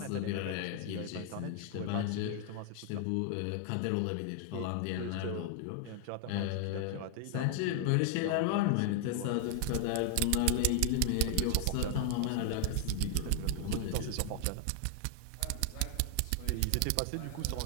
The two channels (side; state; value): both; different; correlation 0.00